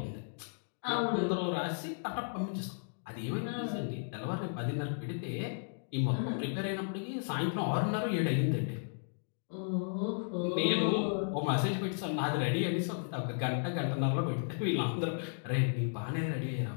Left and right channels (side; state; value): right; silent; digital silence